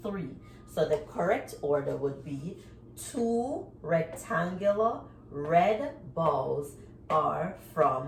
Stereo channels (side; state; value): both; identical; correlation 1.00